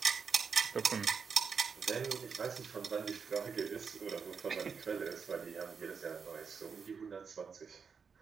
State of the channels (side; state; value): left; quieter; 5.9 dB